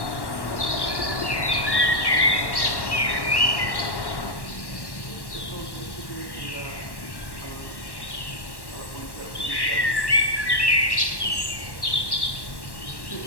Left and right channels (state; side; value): late; right; 1.1 ms